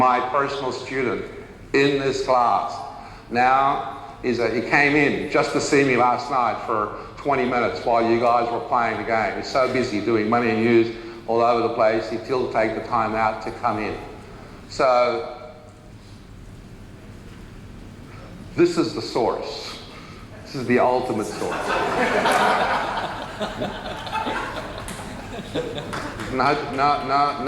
personal student in this class. Now, he came in just to see me last night for 20 minutes while you guys were playing the game. He's so busy doing Money and Use all over the place, he'd still take the time out to come in. So, this is the source. This is the ultimate source. No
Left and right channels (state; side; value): identical; both; correlation 1.00